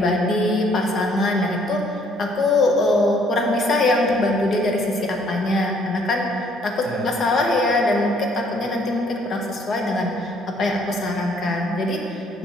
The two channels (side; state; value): both; normal; correlation 0.63